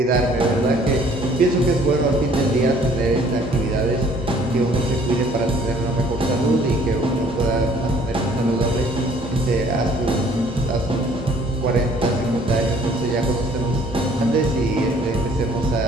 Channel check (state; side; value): normal; both; correlation 0.58